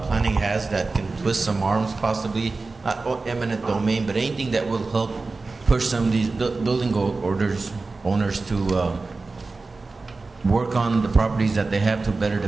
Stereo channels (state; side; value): quieter; left; 3.7 dB